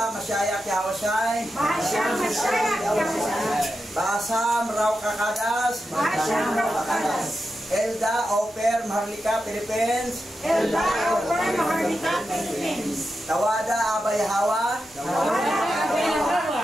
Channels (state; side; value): normal; both; correlation 0.89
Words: Masyaya, Kiyawasay. Basa, Masyaya, Kiyawasay. Basa, Mraw Kakadas. Basa, Mraw Kakadas. Elda, Oper, Maharlika, Philippines. Elda, Oper, Maharlika, Philippines. Tawada, Abay Hawa. Tawada, Abay Hawa.